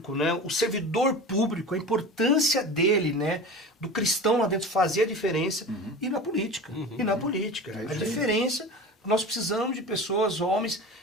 né? O servidor público, a importância dele, né? Do cristão lá dentro fazer a diferença, e na política. A diferença, nós precisamos de pessoas, homens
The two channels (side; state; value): both; normal; correlation 0.33